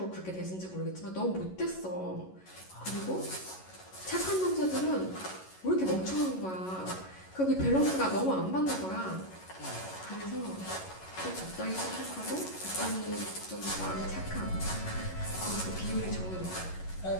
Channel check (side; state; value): right; late; 11 ms